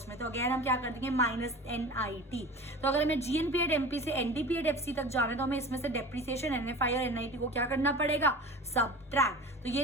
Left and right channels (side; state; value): both; normal; correlation 0.36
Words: में, तो अगेन हम क्या कर देंगे, माइनस NIT। तो अगर हमें GNP एट MP से NDP एट FC तक जाना है तो हमें इसमें से डेप्रिसिएशन, NFI और NIT को क्या करना पड़ेगा, सबट्रैक्ट। तो ये